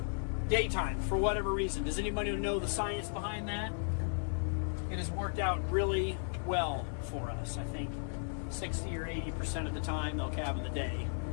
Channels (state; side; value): silent; right; 54 dB below the other